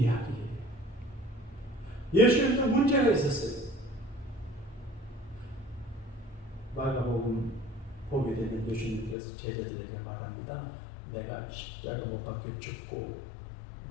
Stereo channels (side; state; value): right; drops out; at 9.2 s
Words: 예수님도 문제가 있었어요. 마가복음 보게 되면 예수님께서 제자들에게 말합니다. 내가 십자가 못 박혀 죽고